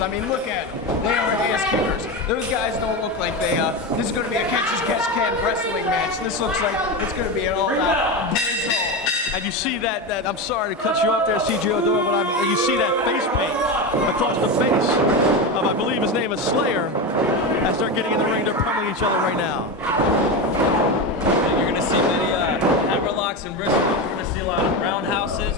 mean, look at them. They are ass kickers. Those guys don't look like they, this is going to be a catch-as-catch-can wrestling match. This looks like it's going to be an all-out brizzle. And you see that, I'm sorry to cut you off there, C.J. O'Doyle, but you see that face paint across the face of, I believe his name is Slayer. As they're getting in the ring, they're pummeling each other right now. You're going to see many hammerlocks and wrist locks. You're going to see a lot of roundhouses,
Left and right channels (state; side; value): normal; both; correlation 0.18